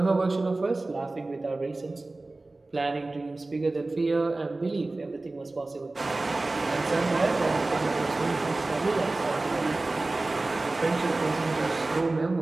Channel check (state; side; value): quieter; left; 3.1 dB